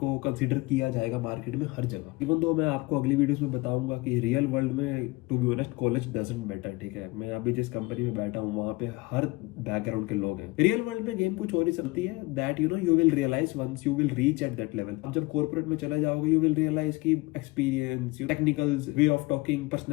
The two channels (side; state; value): right; quieter; 22.1 dB